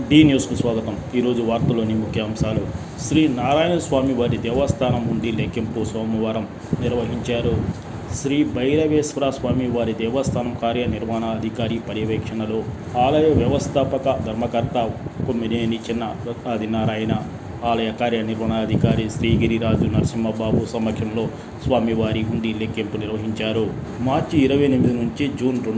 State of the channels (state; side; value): identical; both; correlation 1.00